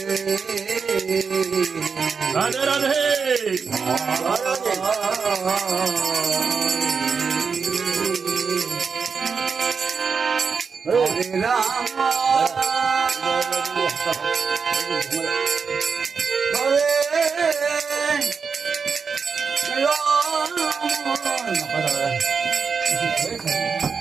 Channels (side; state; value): left; quieter; 5.5 dB